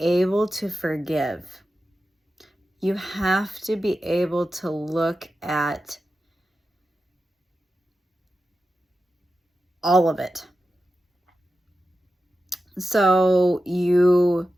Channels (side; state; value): both; normal; correlation 0.92